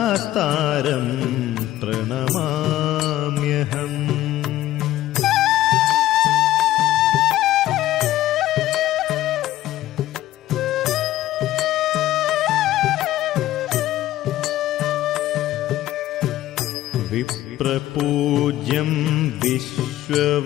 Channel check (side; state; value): right; quieter; 14.4 dB